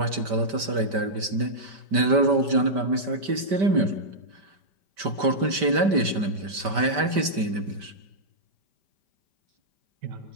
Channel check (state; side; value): late; left; 5.1 ms